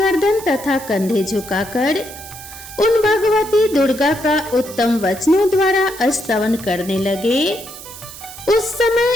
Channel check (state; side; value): noise; right; hiss, 14 dB below the sound